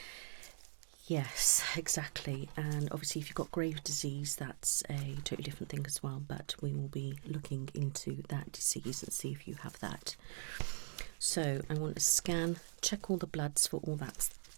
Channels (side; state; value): left; silent; digital silence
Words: Yes, exactly. And obviously, if you've got Graves' disease, that's a totally different thing as well. But we will be looking into that disease and see if you have that. So I want to scan, check all the bloods for all that